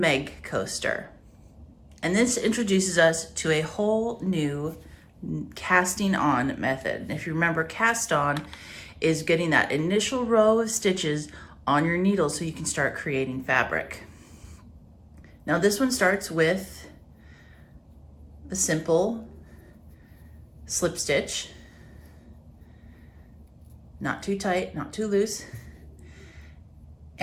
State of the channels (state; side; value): identical; both; correlation 1.00